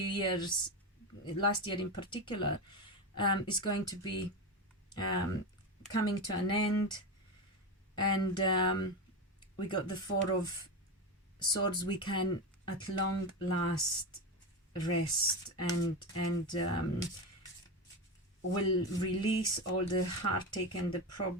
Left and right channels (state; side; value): normal; both; correlation 0.17